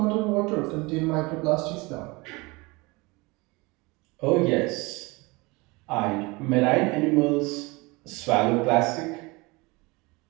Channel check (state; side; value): quieter; left; 24.9 dB